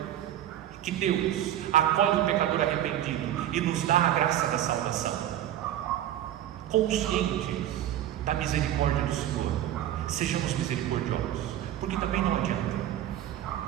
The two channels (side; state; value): left; quieter; 12.0 dB